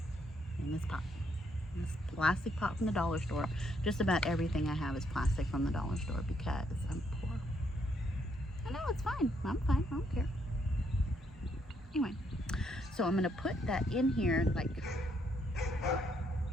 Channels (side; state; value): both; normal; correlation 0.73